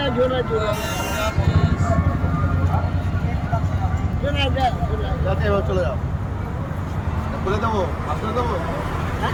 চলে যাও, খুলে দেবো, আসলে দেবো।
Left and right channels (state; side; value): identical; both; correlation 1.00